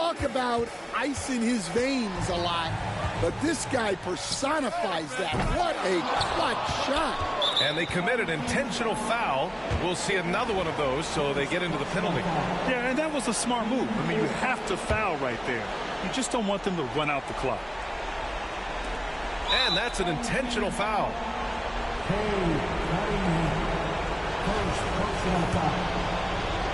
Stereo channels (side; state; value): both; identical; correlation 1.00